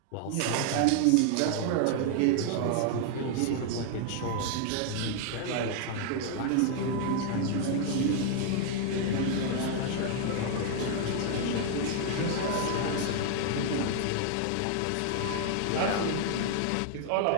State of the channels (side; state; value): both; different; correlation 0.00